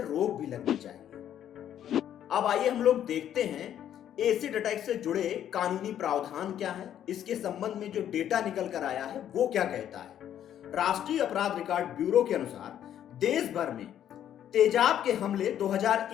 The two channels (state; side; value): quieter; right; 10.5 dB